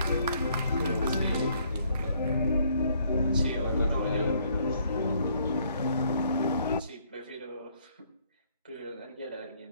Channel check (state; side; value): inverted; both; correlation -0.67